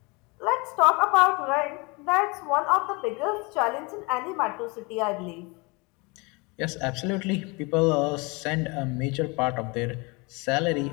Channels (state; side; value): quieter; right; 27.9 dB